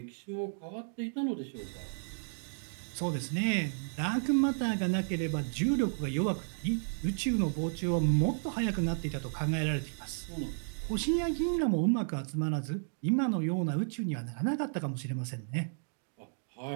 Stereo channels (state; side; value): silent; left; digital silence